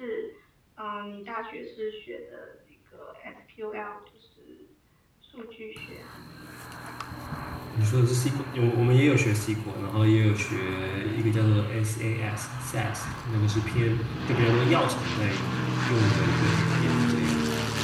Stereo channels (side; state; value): both; identical; correlation 1.00